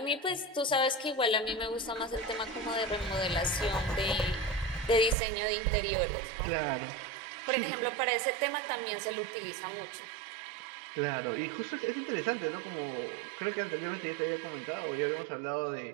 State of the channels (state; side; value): drops out; left; at 5.2 s